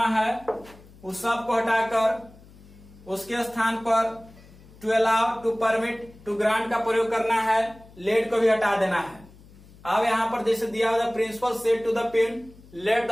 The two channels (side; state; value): left; noise; hum, 23 dB below the sound